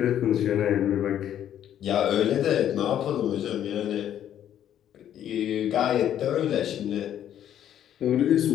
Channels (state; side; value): quieter; right; 10.6 dB